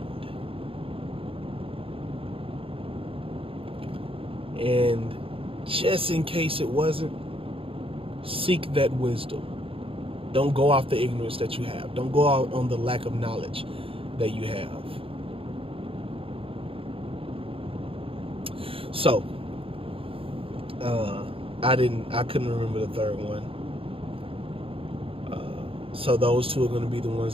And just in case it wasn't, seek that wisdom. Don't go off the ignorance that you have. Don't go out on the lack of knowledge that you have. So, I couldn't remember the third one. So those two are going to be the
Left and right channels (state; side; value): late; left; 0.27 ms